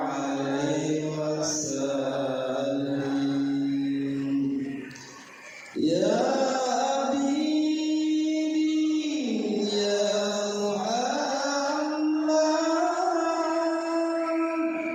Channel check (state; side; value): identical; both; correlation 1.00